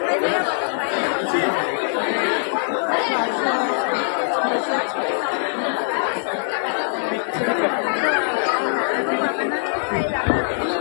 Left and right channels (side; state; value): right; silent; digital silence